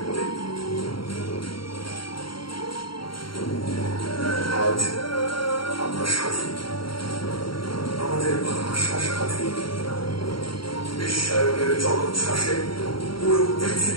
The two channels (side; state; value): right; late; 0.73 ms